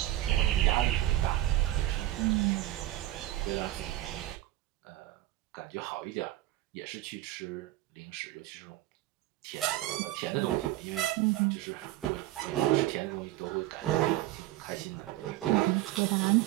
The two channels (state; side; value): quieter; left; 15.7 dB